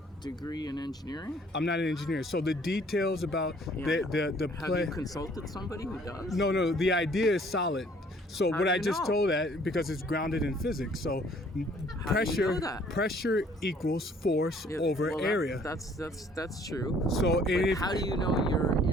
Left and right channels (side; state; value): both; normal; correlation 0.59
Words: degree in engineering? I'm not an engineer, so the details about the play. Have you consulted somebody who does? No, the idea is solid. So How what do I you just know? told that because it's grounded in physics. So How do you know that? pressure equals force over area. That's true. So But if, how do you know